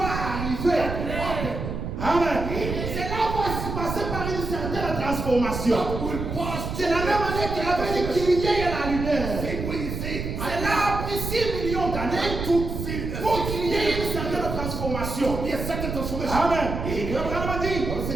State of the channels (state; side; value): noise; right; rumble, 5 dB below the sound